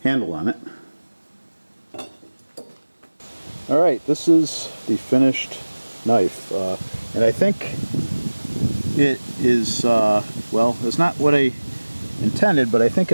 handle on it. Alright, this is the finished knife, and I think it is, well, it's not what I intended, but I think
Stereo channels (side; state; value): both; inverted; correlation -1.00